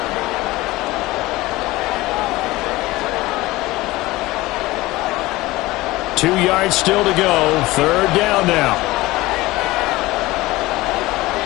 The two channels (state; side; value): quieter; right; 19.4 dB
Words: Two yards still to go. Third down now.